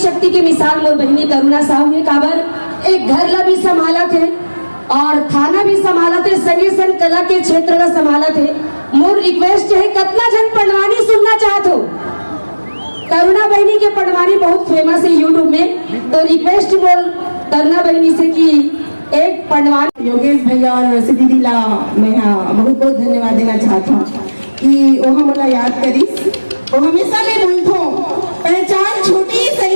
के मिसाल मोर बहनी करुणा साहू ने काबर एक घर ला भी संभाला थे और थाना भी संभाला थे, संगे संग कला के क्षेत्र ला संभाला थे। मोर रिक्वेस्ट है कितना जन पढ़वानी सुनना चाहत हो। करुणा बहनी के पढ़वानी बहुत फेमस है यूट्यूब में, तो रिक्वेस्ट मोर करुणा बहनी से कि एक पढ़वानी। योगेश भैया और वैसे दीदी ला मैं बहुत बहुत धन्यवाद देना चाहता हूँ कि वो हमला याद करीस। वो हमेशा मैं बोलता हूँ पहचान छोटी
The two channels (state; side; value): inverted; both; correlation -1.00